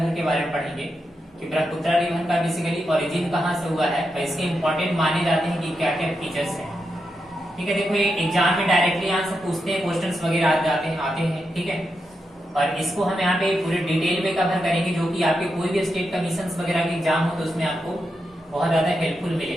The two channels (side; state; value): both; normal; correlation 0.86